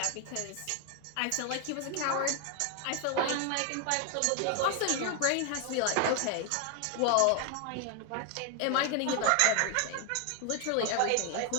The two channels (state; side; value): different; both; correlation 0.01